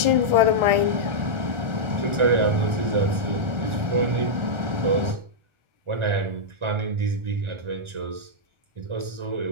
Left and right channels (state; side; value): late; left; 1.4 ms